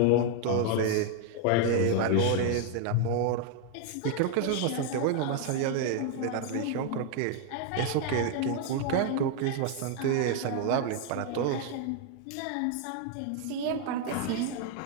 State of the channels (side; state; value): both; different; correlation 0.00